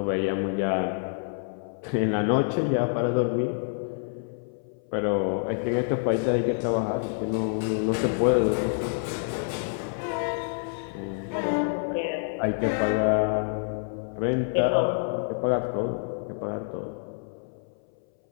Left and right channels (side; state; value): right; silent; 60 dB below the other